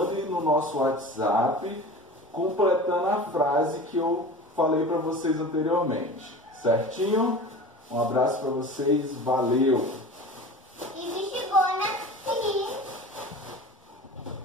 no nosso WhatsApp completando a frase que eu falei para vocês anteriormente, certinho? Um abraço para vocês, valeu! E bexigona aqui.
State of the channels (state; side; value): normal; both; correlation 0.36